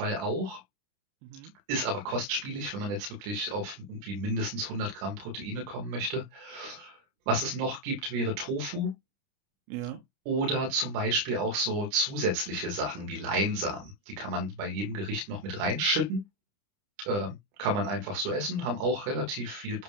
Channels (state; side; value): late; left; 30 ms